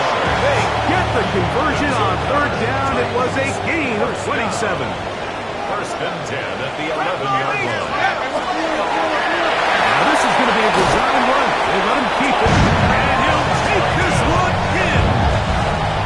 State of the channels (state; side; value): identical; both; correlation 1.00